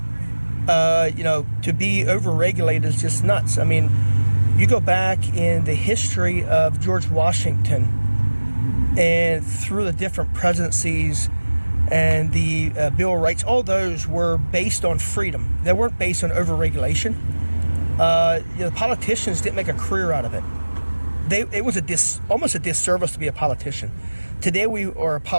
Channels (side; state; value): both; inverted; correlation -1.00